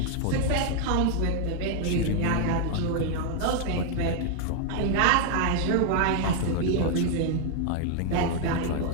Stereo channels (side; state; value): both; different; correlation 0.00